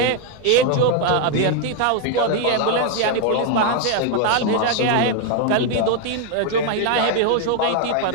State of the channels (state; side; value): different; both; correlation 0.01